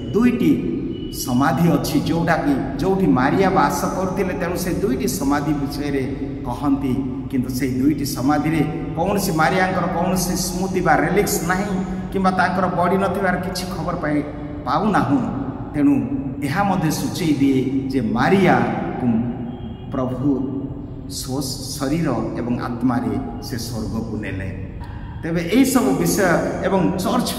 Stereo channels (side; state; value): both; identical; correlation 1.00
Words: दुईटी समाधि अच्छी जोटा कि जोठी मारिया बास करते तेणु से दुईटी समाधि विषय रे कहती किंतु से दुईटी समाधि रे कौन सी मारिया कौन सी स्मृति बा रेलिक्स नहीं किंबा तांकर बड़ी नथिबार किछि खबर पाऊ नाहु तेणु यह मध्य सूचई दिए जे मारिया प्रभु शरीर एवं आत्मा रे से स्वर्ग को नेले। तेबे एई सब विषय एवं चर्च